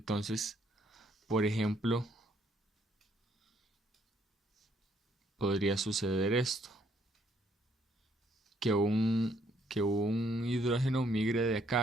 por ejemplo, podría suceder esto, que un hidrógeno migre de acá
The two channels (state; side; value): normal; both; correlation 0.68